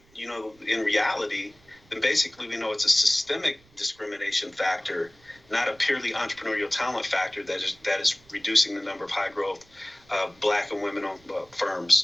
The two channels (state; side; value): noise; right; rumble, 29 dB below the sound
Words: in reality, then basically we know it's a systemic discrimination factor, not a purely entrepreneurial talent factor that is reducing the number of high growth Black and women-owned